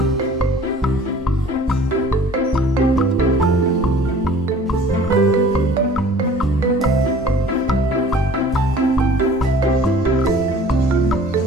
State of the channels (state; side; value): normal; both; correlation 0.48